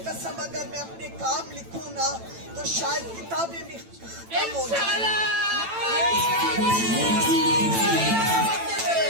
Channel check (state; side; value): late; left; 9.0 ms